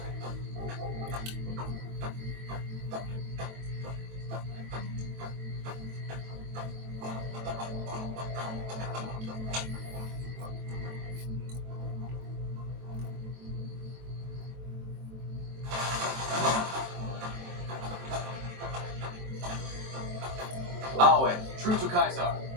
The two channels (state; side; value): late; left; 23 ms